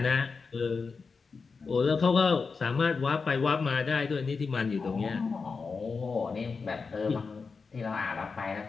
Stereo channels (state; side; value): quieter; right; 4.8 dB